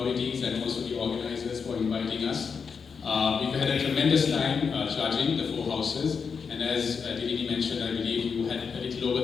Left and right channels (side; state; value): right; quieter; 5.9 dB